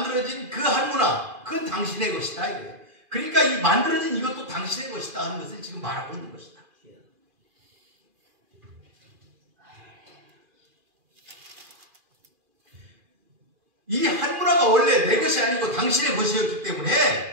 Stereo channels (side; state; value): left; late; 2.4 ms